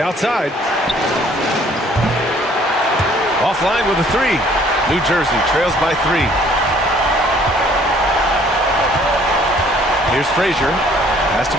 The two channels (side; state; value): both; normal; correlation 0.59